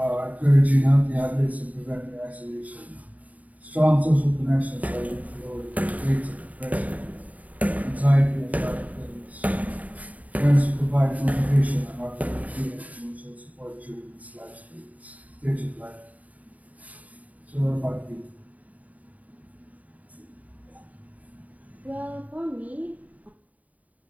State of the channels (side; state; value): left; late; 0.072 ms